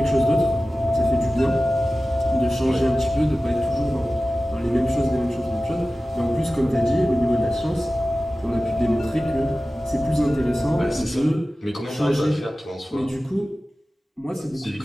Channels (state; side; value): normal; both; correlation 0.96